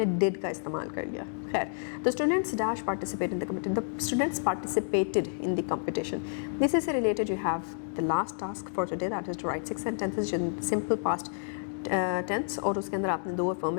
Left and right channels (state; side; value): silent; right; digital silence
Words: did का इस्तेमाल कर लिया. खैर, the students dash participate in the competition. The students participated in the competition. This is related. You have the last task for today, that is to write 6 sentences in simple past tense, और उसके अंदर आपने 2